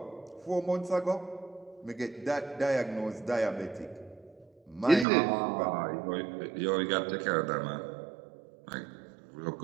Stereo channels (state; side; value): drops out; left; at 5.1 s